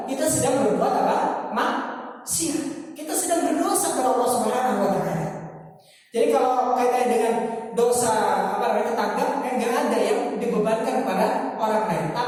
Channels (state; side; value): identical; both; correlation 1.00